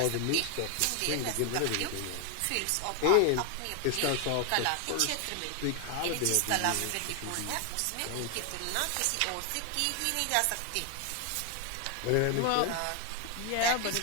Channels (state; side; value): different; both; correlation 0.01